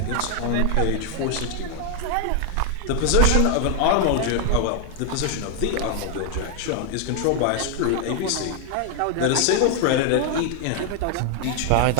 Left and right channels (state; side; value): different; both; correlation 0.00